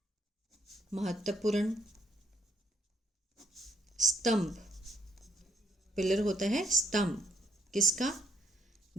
महत्वपूर्ण, स्तंभ, पिलर होता है स्तंभ, किसका?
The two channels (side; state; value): both; normal; correlation 0.68